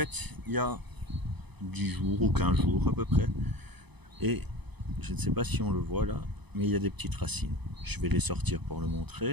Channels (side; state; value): left; late; 0.99 ms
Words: il y a 10 jours ou 15 jours à peu près. Et je ne sais pas si on le voit là, mais il y a des petites racines. Je vais les sortir pour le